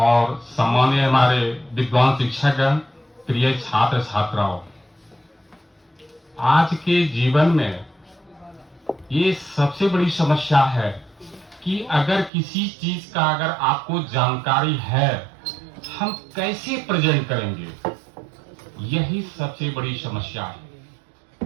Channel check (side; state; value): left; drops out; at 12.3 s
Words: सम्मानीय हमारे विद्वान शिक्षकगण, प्रिय छात्र छात्राओं, आज के जीवन में ये सबसे बड़ी समस्या है कि अगर किसी चीज का अगर आपको जानकारी है, हम कैसे प्रेजेंट करेंगे, यही सबसे बड़ी समस्या